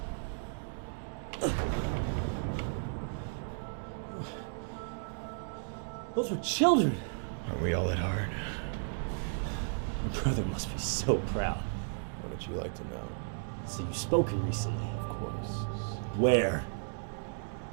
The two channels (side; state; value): left; silent; digital silence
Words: Those were children. Aren't we all at heart? Your brother must be so proud. What would you like to know? So you've spoken recently, of course. Where?